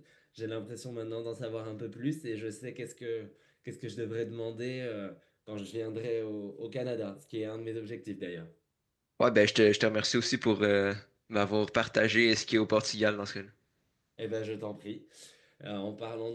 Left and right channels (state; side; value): identical; both; correlation 1.00